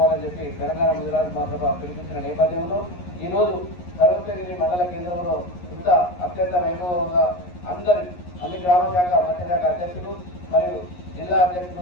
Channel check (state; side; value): late; right; 11 ms